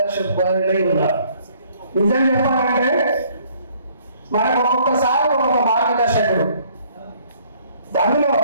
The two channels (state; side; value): inverted; both; correlation -0.61